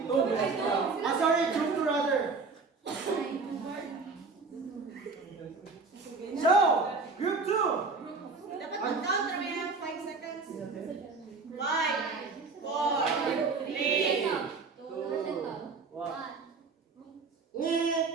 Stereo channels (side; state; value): left; quieter; 4.3 dB